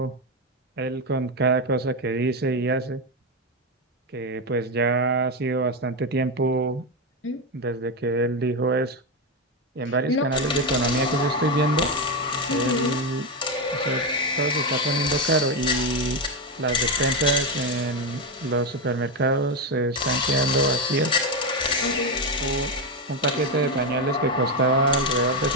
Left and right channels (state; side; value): normal; both; correlation 0.09